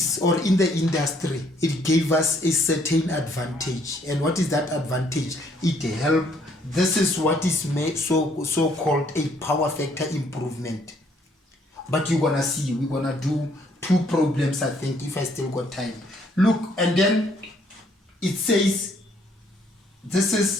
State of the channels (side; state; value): both; normal; correlation 0.66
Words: or in the industry, it gave us a certain advantage. And what is that advantage? It helped. This is what is made so called a power factor improvement. But you're gonna see, we're gonna do 2 problems, I think, if I still got time. Look, and then it says this